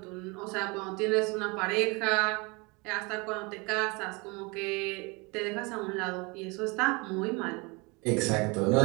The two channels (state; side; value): quieter; left; 27.9 dB